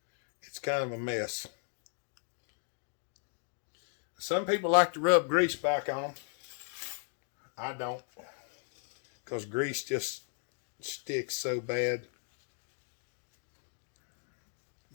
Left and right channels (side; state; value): right; silent; 54 dB below the other